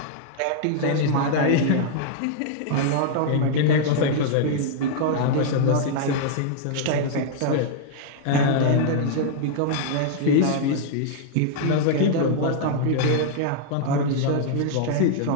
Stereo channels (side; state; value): both; different; correlation -0.01